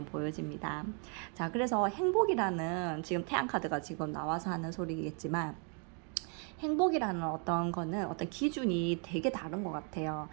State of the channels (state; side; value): quieter; left; 39.2 dB